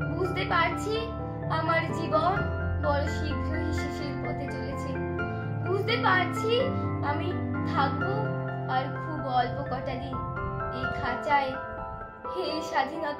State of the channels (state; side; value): identical; both; correlation 1.00